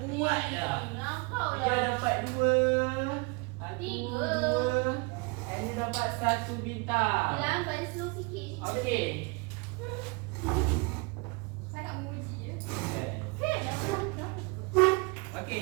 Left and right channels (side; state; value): left; quieter; 29.7 dB